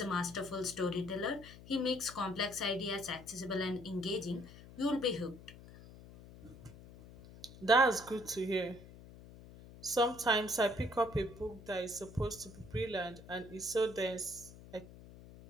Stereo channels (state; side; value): noise; left; hum, 18 dB below the sound